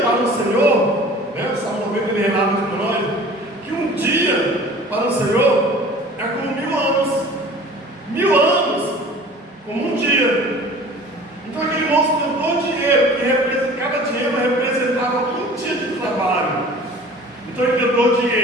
o Senhor, né? O Salmo 90 ele relata para nós que um dia para o Senhor é como 1000 anos. 1000 anos como um dia. Então aquele moço deu 2 dinheiros, que cada dinheiro representava um dia de trabalho. Então ele deu 2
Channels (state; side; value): normal; both; correlation 0.45